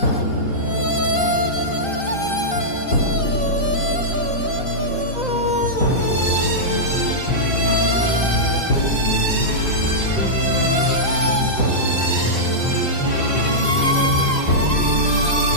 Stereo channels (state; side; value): late; right; 3.9 ms